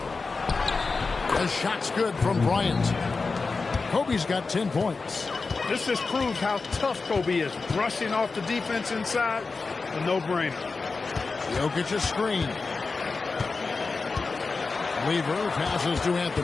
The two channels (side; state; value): right; quieter; 4.2 dB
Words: The shot's good from Bryant. Kobe's got 10 points. This just proves how tough Kobe is. Brushing off the defense inside, a no-brainer. Jokic's screen. Lever passes to